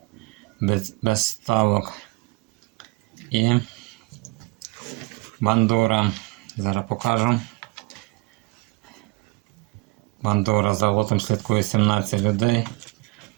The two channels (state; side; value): quieter; left; 25.2 dB